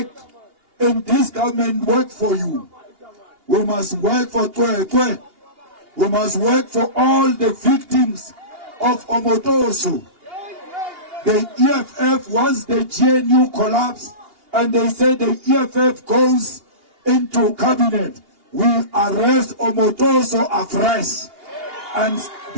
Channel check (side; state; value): left; late; 2.8 ms